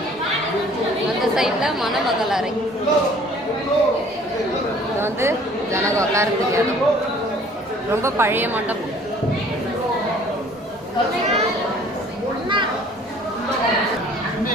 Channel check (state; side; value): normal; both; correlation 0.53